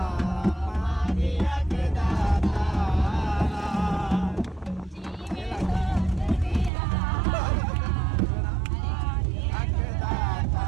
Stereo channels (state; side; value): drops out; left; at 6.7 s